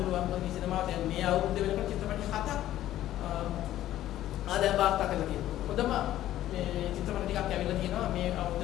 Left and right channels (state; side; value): quieter; right; 13.3 dB